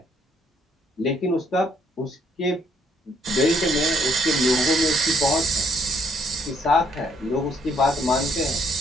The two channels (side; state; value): both; normal; correlation 0.68